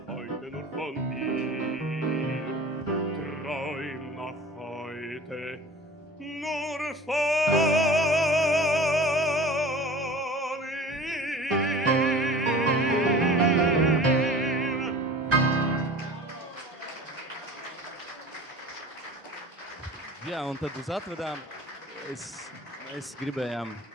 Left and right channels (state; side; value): normal; both; correlation 0.41